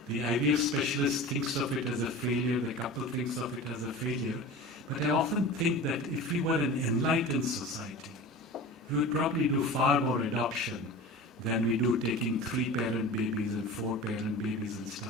The IVF specialist thinks of it as a failure, the couple thinks of it as a failure. But I often think that if we were an enlightened society, we would probably do far more adoption than we do taking 3-parent babies and 4-parent babies and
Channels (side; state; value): both; normal; correlation 0.34